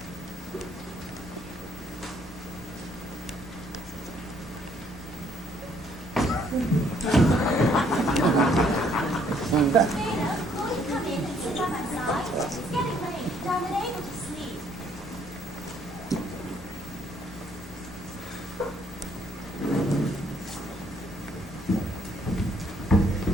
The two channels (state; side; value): normal; both; correlation 0.66